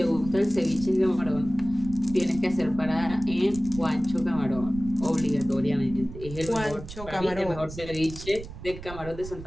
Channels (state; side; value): noise; right; rumble, 12 dB below the sound